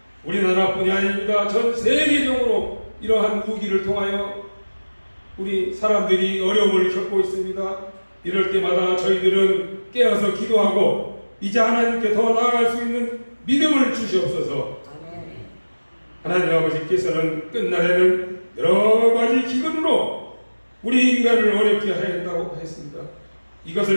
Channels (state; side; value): inverted; both; correlation -1.00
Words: 우리나라뿐이 아닙니다. 전 세계적으로 이러한 위기를 통하여 우리 사람들이 어려움을 겪고 있습니다. 이럴 때마다 저희들은 깨어서 기도하고 이제 하나님께 더 나아갈 수 있는 믿음을 주시옵소서. 아멘. 하나님 아버지께서는 끝날에는 여러 가지 기근으로 우리 인간을 어렵게 하였다고 했습니다.